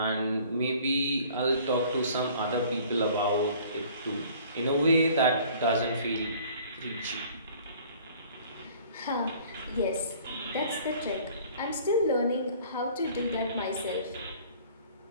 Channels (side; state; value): both; inverted; correlation -0.52